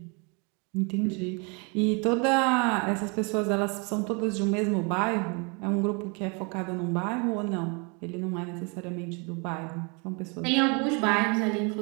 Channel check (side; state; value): left; quieter; 32.8 dB